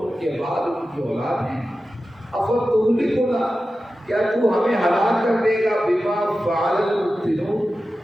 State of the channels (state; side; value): normal; both; correlation 0.93